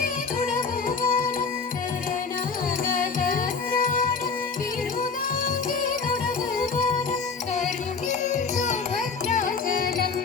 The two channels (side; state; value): right; quieter; 5.0 dB